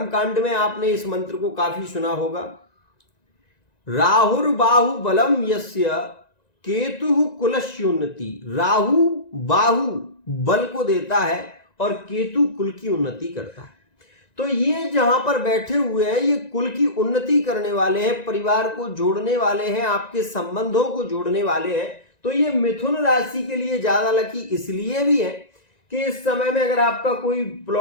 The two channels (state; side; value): late; right; 1.9 ms